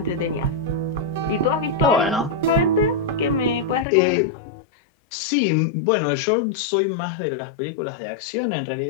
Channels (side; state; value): right; drops out; at 3.9 s